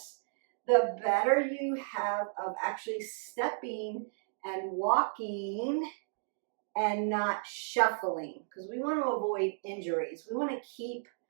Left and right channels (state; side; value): silent; left; digital silence